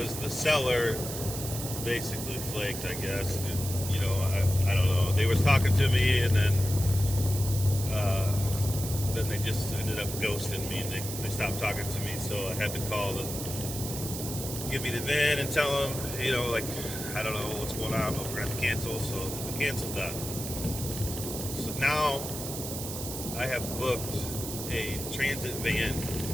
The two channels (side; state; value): right; noise; hiss, 7 dB below the sound